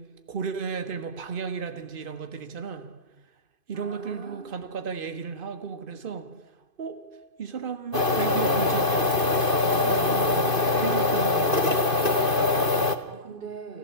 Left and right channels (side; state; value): left; late; 2.5 ms